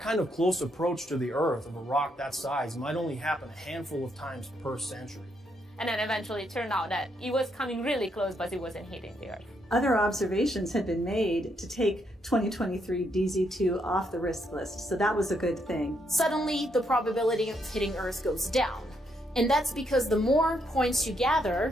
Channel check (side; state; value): both; normal; correlation 0.76